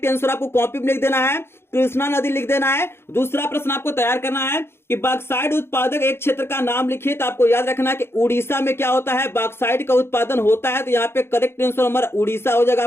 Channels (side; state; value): right; late; 0.12 ms